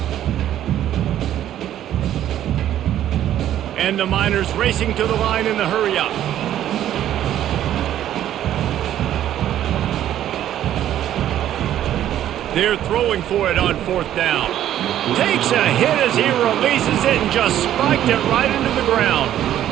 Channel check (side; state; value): left; quieter; 11.7 dB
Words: And the Miners racing to the line in the hurry-up. They're throwing for it on fourth down. Takes a hit as he releases it and just spiked it right into the ground.